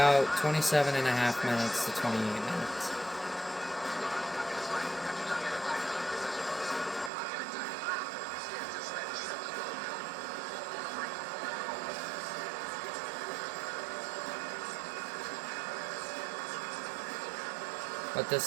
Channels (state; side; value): drops out; left; at 7.1 s